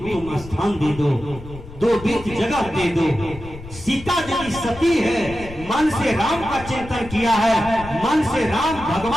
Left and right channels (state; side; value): noise; left; rumble, 15 dB below the sound